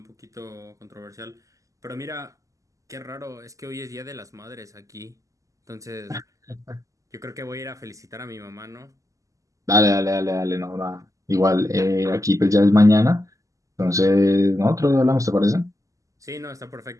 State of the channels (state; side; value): late; left; 0.16 ms